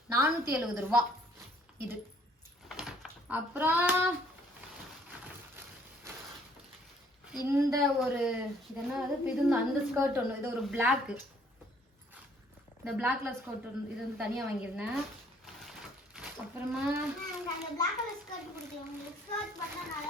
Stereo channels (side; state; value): both; normal; correlation 0.61